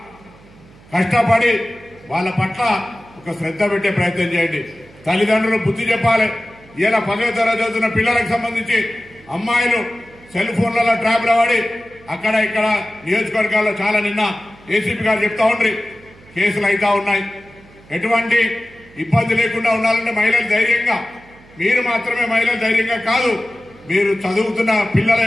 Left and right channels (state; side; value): noise; right; hum, 25 dB below the sound